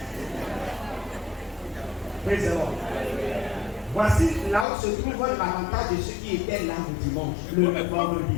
Praise the Lord. Voici là où se trouve l'avantage de ceux qui étaient là le dimanche, le vendredi.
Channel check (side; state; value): right; drops out; at 4.7 s